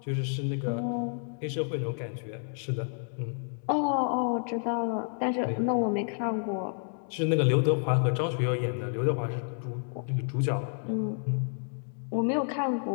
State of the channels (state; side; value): silent; right; 57 dB below the other